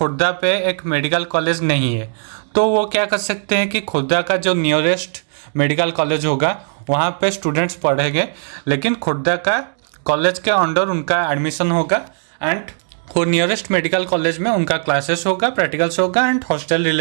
पे एक मेडिकल कॉलेज नहीं है, तो वो क्या कर सकते हैं कि खुर्दा का जो नियरेस्ट मेडिकल कॉलेज होगा वहाँ पे स्टूडेंट्स पढ़ेंगे, लेकिन खुर्दा का कॉलेज के अंडर उनका एडमिशन होगा, एंड वो नियरेस्ट मेडिकल कॉलेज में उनका क्लासेस होगा, प्रैक्टिकल्स होगा, एंड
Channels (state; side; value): silent; left; digital silence